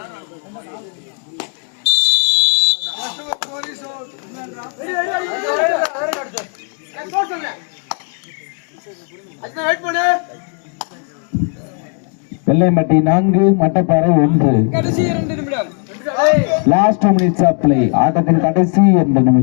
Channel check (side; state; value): right; quieter; 38.7 dB